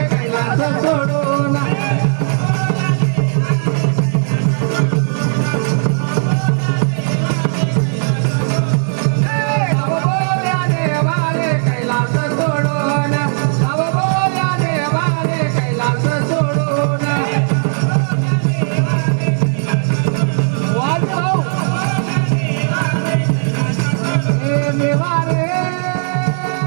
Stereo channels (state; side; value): silent; left; digital silence